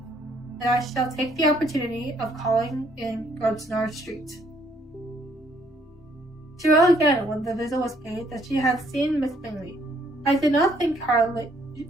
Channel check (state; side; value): normal; both; correlation 0.66